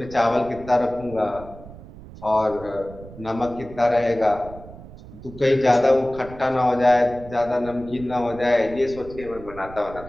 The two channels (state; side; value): noise; right; rumble, 16 dB below the sound